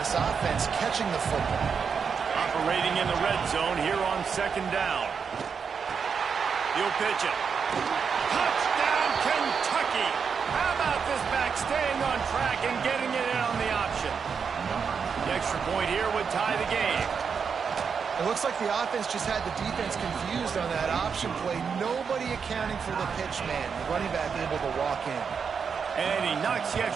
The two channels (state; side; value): quieter; left; 6.2 dB